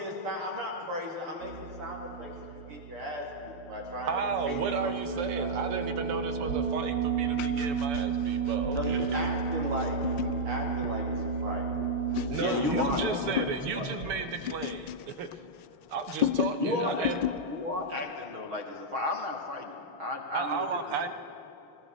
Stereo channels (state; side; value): late; left; 7.0 ms